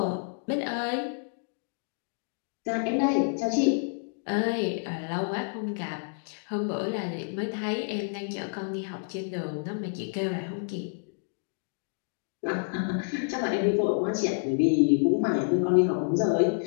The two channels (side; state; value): right; silent; digital silence